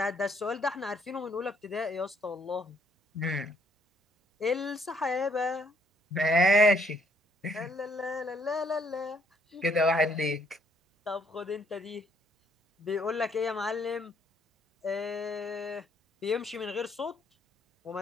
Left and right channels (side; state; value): both; normal; correlation 0.68